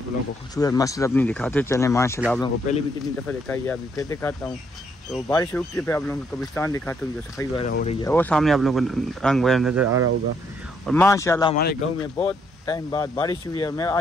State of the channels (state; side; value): normal; both; correlation 0.72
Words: लोगों को खूबसूरत मस्जिद अपनी दिखाते चलें माशाल्लाह। आप लोगों को पहले भी कितनी दफ़ा दिखाई है, अभी फिर दिखाता हूँ। तो बारिश रुकती है फिर आप लोगों को कब्रिस्तान दिखाता हूँ, जो सफाई वगैरह हो रही है, वो सामने आप लोगों को रंग वगैरह नज़र आ रहा होगा। और माशाल्लाह हमारे गाँव में बहुत टाइम बाद बारिश हुई है, मैं